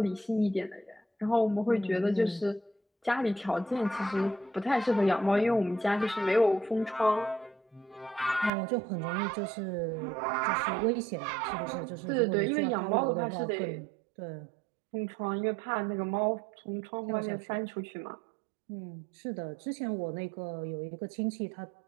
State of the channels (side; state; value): left; drops out; at 8.5 s